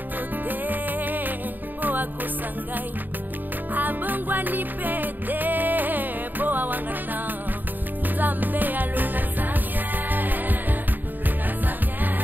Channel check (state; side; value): late; left; 0.089 ms